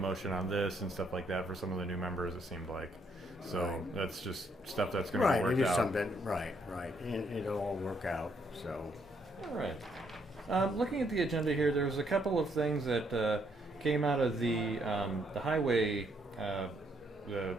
on this and stuff like that for some of the new members. It seemed like. So Right. that's just stuff that's going to Right, work it is out. something. Right, and it'll all work out. So, All right. Looking at the agenda here, there was a couple of things that came out of the highway,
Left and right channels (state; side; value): normal; both; correlation 0.72